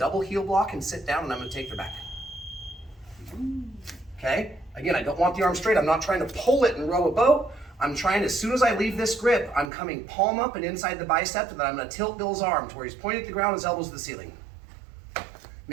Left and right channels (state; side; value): drops out; left; at 9.7 s